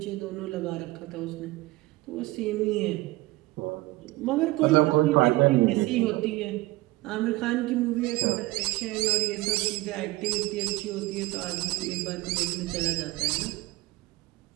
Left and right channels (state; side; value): quieter; left; 19.6 dB